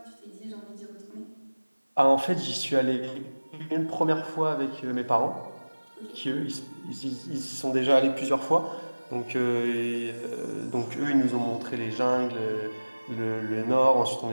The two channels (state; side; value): inverted; both; correlation -1.00